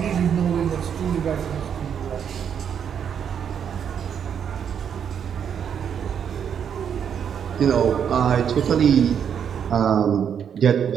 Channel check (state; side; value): quieter; left; 8.0 dB